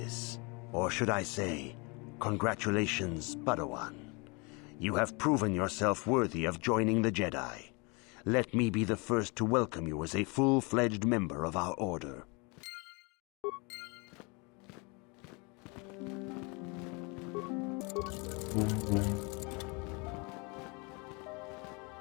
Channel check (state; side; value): quieter; right; 30.2 dB